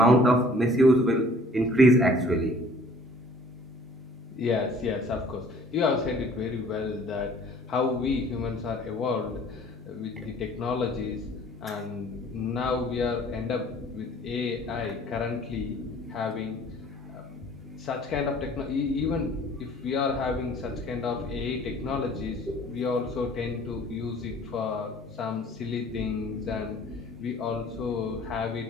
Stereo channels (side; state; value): both; normal; correlation 0.53